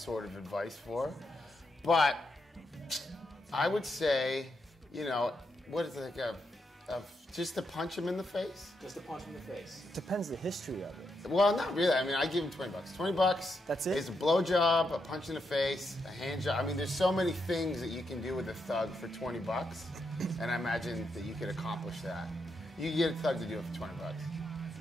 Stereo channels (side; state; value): both; normal; correlation 0.82